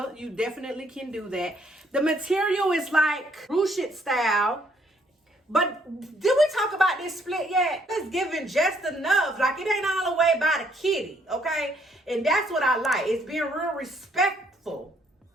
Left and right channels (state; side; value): normal; both; correlation 0.68